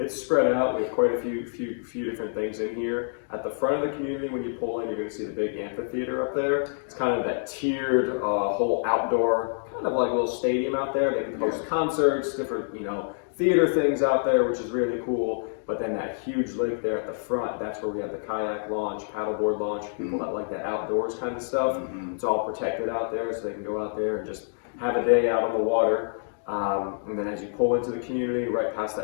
spread out. We have quite a few different things in here. At the front of the community, when you pull in, you're going to see the big amphitheater up there. It's kind of that tiered whole outdoor, kind of like a little stadium out there. They can host concerts, different theater things out there, which is really cool. But then that huge lake there at the front, that's where we have the kayak launch, paddleboard launch, people that like that outdoors kind of stuff. It's all protected out there, so they can go out there and just have a day out on the water. And then as you pull into the community, right past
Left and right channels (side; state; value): right; silent; digital silence